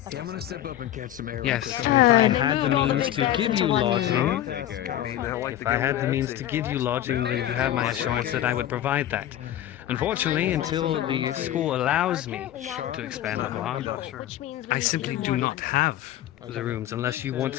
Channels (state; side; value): quieter; right; 12.4 dB